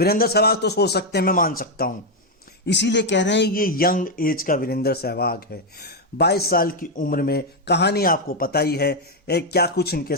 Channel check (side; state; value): both; normal; correlation 0.02